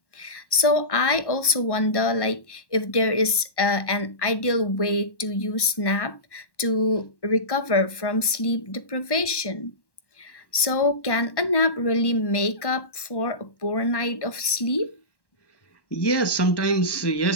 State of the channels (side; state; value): right; late; 1.1 ms